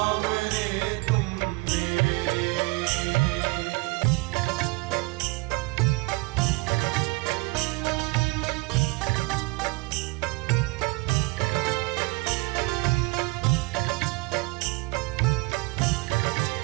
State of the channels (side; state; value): left; quieter; 25.3 dB